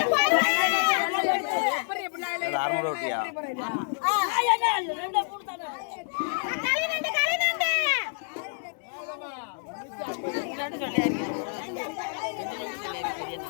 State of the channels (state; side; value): silent; right; 59 dB below the other